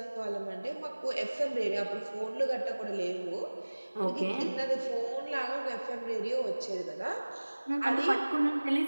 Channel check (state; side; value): inverted; both; correlation -1.00